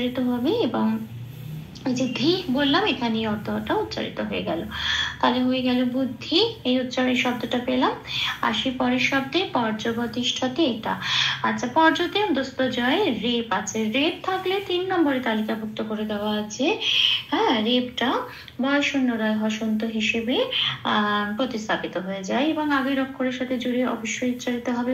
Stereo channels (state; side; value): identical; both; correlation 1.00